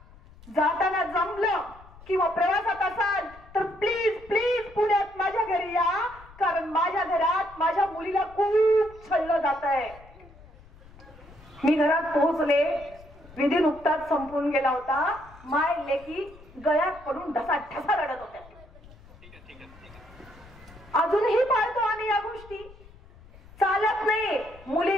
जाताना जमलं किंवा प्रवासात असाल तर प्लीज प्लीज पुण्यात माझ्या घरी या, कारण माझ्या घरात माझ्या मुलीला खूप छळलं जात आहे. मी घरात पोहोचले, विधी नुकताच संपून गेला होता. माय लेकी गळ्यात पडून ढसा ढसा रडत होत्या. अजूनही पाळतो आम्ही या गोष्टी. चालत नाही,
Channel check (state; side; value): noise; left; rumble, 22 dB below the sound